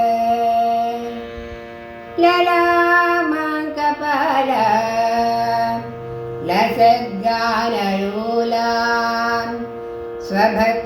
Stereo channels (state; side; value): identical; both; correlation 1.00